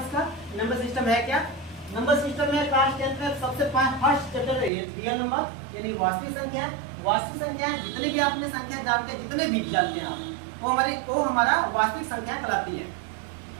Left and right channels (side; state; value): left; drops out; at 4.7 s